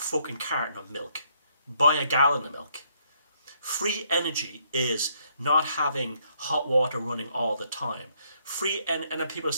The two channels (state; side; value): inverted; both; correlation -0.71